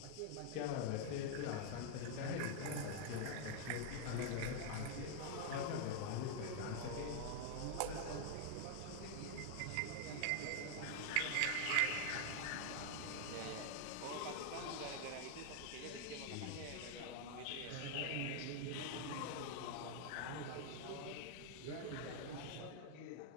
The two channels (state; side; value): different; both; correlation 0.00